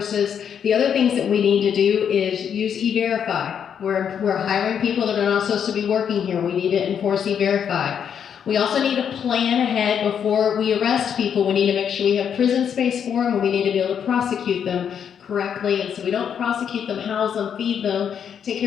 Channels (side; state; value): right; quieter; 8.1 dB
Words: The other things that we need to do is use E-Verify. We're hiring people that are not supposed to be working here. We need to enforce E-Verify. We also need to plan ahead before we arrest people. We need to make sure we have prison space for them, and we need to be able to prosecute them correctly. And so we don't prosecute them, house them, feed them, take